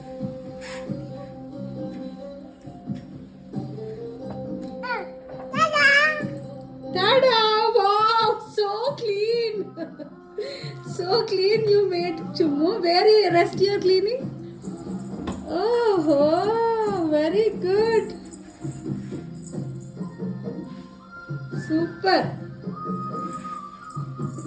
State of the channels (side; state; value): both; identical; correlation 1.00